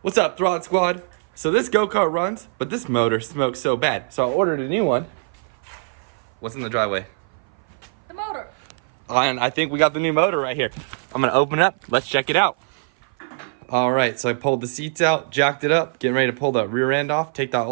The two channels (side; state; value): left; silent; 57 dB below the other